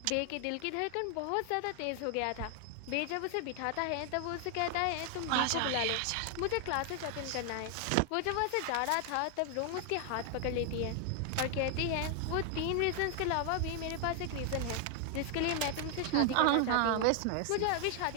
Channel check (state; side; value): different; both; correlation 0.00